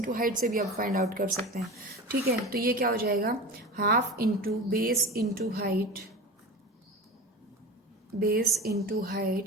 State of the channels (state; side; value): normal; both; correlation 0.30